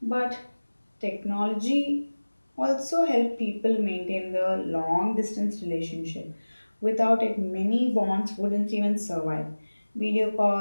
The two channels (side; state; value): both; inverted; correlation -1.00